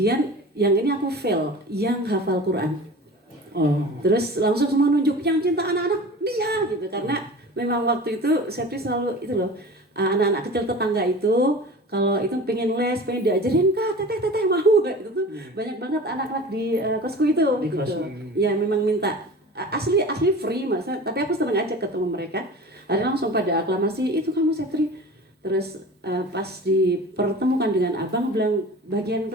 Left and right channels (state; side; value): normal; both; correlation 0.37